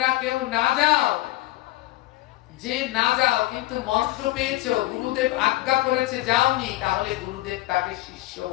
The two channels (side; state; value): right; quieter; 17.8 dB